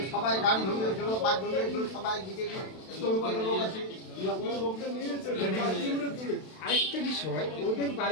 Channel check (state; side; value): late; right; 32 ms